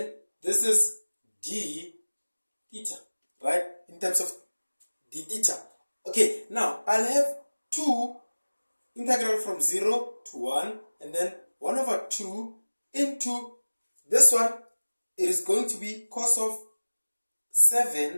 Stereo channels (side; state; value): both; inverted; correlation -1.00